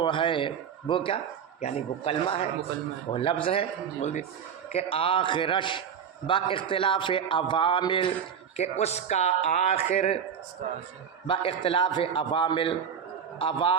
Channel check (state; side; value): quieter; left; 7.7 dB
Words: ہے، وہ کیا یعنی وہ کلمہ ہے، وہ لفظ ہے، بول دی کہ آخرش با اختلاف عوامل، کہ اس کا آخر با اختلاف عوامل،